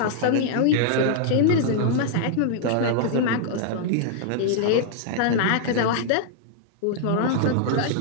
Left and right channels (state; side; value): different; both; correlation -0.01